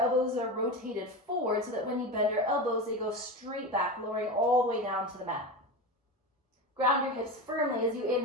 are rotated forward so that when you bend your elbows, they go straight back, lowering all the way down to the mat. Ground your hips firmly as you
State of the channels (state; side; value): normal; both; correlation 0.23